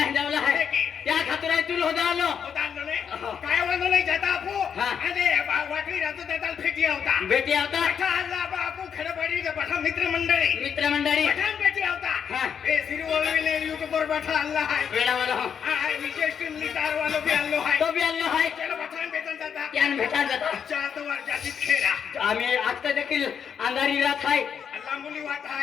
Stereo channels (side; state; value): right; quieter; 7.6 dB